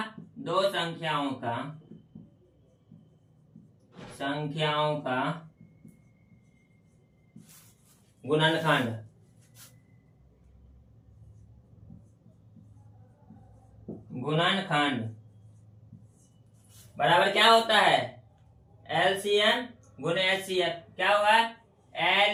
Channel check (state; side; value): identical; both; correlation 1.00